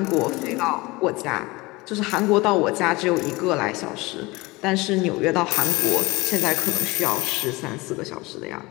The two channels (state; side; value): quieter; right; 22.6 dB